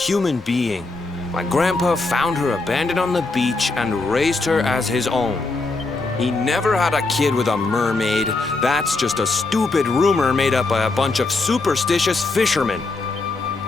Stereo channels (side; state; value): right; quieter; 3.4 dB